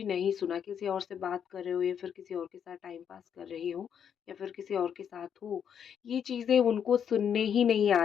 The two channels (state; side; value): quieter; right; 8.2 dB